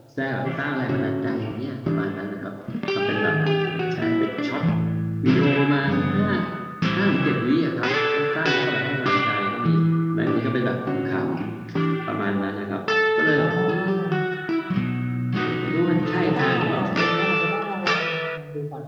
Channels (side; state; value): both; identical; correlation 1.00